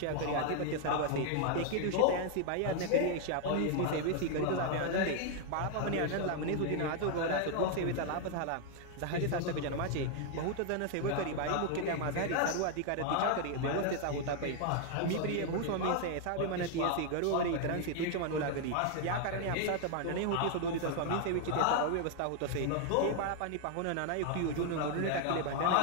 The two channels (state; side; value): different; both; correlation 0.00